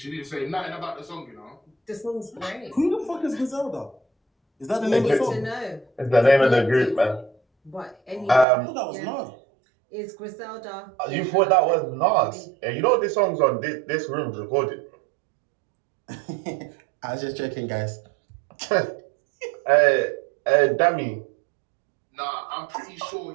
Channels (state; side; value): drops out; left; at 8.5 s